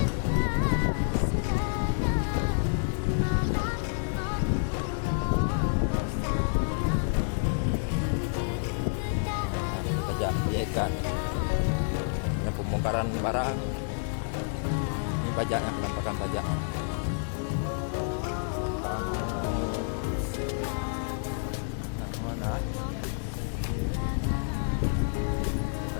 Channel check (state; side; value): silent; right; digital silence